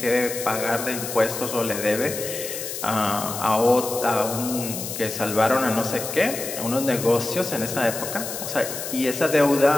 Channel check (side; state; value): left; noise; hiss, 7 dB below the sound